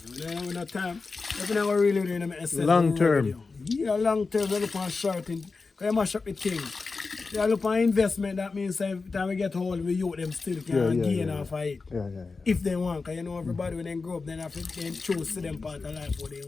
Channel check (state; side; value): quieter; right; 4.2 dB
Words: When I have no time, if I never really do it, Long term. Yeah, long term, I look on short thing. Because I mash up the thing. I look on investment, that means every time we get hold, we youth them still can gain off of it. Yeah. If they want, because you know everybody when they grow up, then have to then choose to them part of life what they